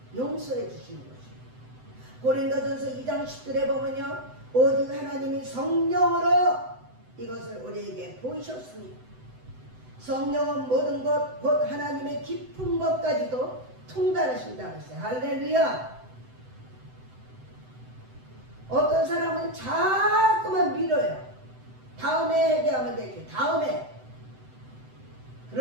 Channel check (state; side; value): late; left; 7.9 ms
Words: 용서해 주시는 것이에요. 고린도전서 2장 10절에 보면요 오직 하나님이 성령으로 이것을 우리에게 보이셨으니 성령은 모든 것 곧 하나님의 깊은 것까지도 통달하신다고 했어요. 할렐루야. 어떤 사람은 자꾸만 미뤄요. 다음에 회개하면 되지. 다음에.